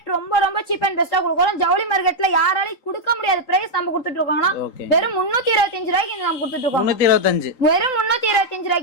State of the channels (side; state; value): right; late; 3.8 ms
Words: ரொம்ப ரொம்ப சீப் அண்ட் பெஸ்டா கொடுக்குறோம். ஜவுளி மார்க்கெட்ல யாராலையும் கொடுக்க முடியாத பிரைஸ் நம்ம கொடுத்துட்டு இருக்கோங்கண்ணா. வெறும் 325 ரூபாய்க்கு நம்ம கொடுத்துட்டு இருக்கோம். 325. வெறும் 325